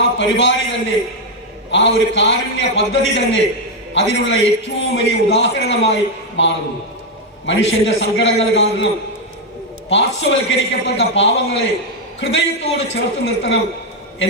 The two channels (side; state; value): both; normal; correlation 0.03